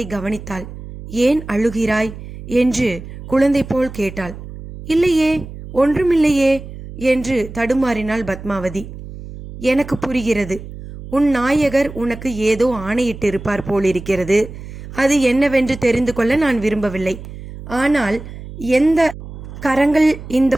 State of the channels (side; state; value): right; noise; hum, 13 dB below the sound